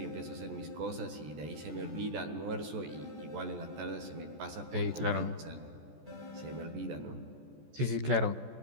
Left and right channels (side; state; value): left; late; 14 ms